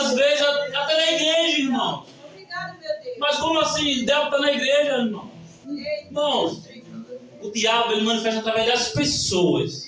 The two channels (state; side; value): identical; both; correlation 1.00